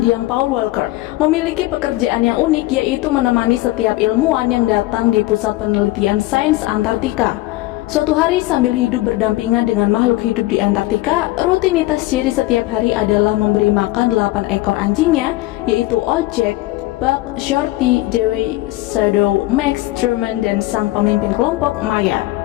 Paul Walker memiliki pekerjaan yang unik, yaitu menemani setiap ilmuwan yang datang di pusat penelitian sains Antartika. Suatu hari sambil hidup berdampingan dengan makhluk hidup di Antartika, rutinitas Jerry setiap hari adalah memberi makan 8 ekor anjingnya, yaitu Old Jack, Buck, Shorty, Dewey, Shadow, Max, Truman, dan sang pemimpin kelompok, Maya.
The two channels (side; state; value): right; quieter; 18.5 dB